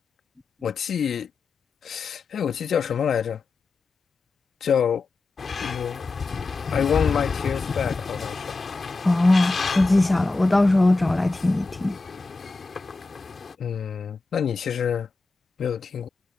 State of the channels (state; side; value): quieter; right; 3.6 dB